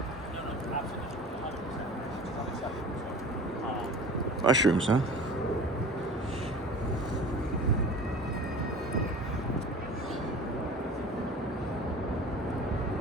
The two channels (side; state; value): both; normal; correlation 0.41